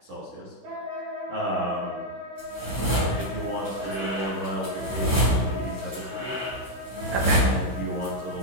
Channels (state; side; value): late; left; 16 ms